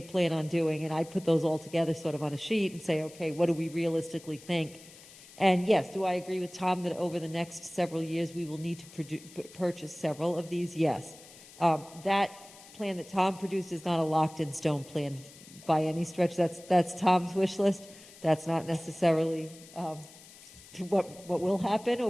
on doing, and I put those all together sort of on a sheet and say, okay, what do we realistically think? And yes, do I agree with Tom that over the next several years we will need to purchase several of these? Yes. That plan that Tom produced is not a locked-in-stone plan by any stretch. That's Tom's wish list. That's not necessarily what will happen or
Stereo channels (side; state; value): left; noise; hiss, 20 dB below the sound